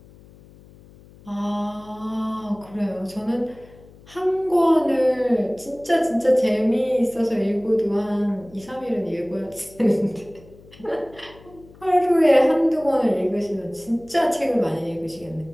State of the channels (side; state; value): left; noise; hum, 23 dB below the sound